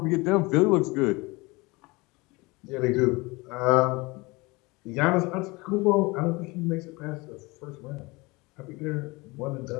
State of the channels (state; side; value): quieter; right; 24.4 dB